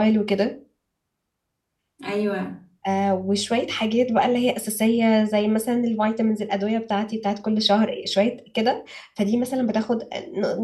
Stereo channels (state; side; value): identical; both; correlation 1.00